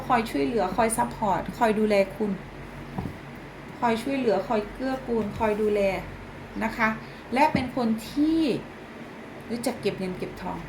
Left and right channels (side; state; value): both; identical; correlation 1.00